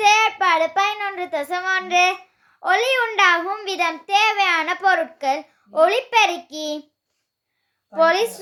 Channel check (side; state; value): both; identical; correlation 1.00